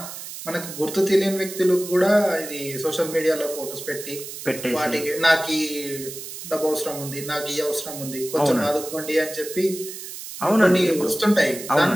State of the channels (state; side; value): noise; right; hiss, 11 dB below the sound